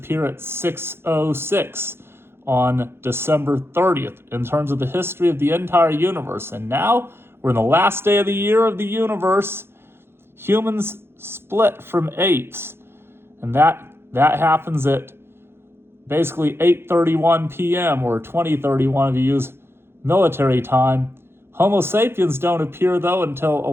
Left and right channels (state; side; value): late; left; 0.11 ms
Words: at 6:06 on December 30th in terms of the history of the entire universe. And now we're in the last day of the year of the universe. Humans split from apes. and that happens at basically 8:31 p.m. or 20:31 if you use military time. Homo sapiens don't appear, though, until